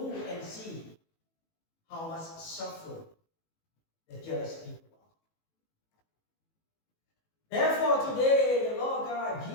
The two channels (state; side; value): late; right; 18 ms